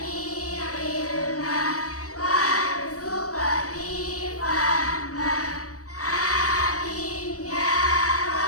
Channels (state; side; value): late; right; 0.66 ms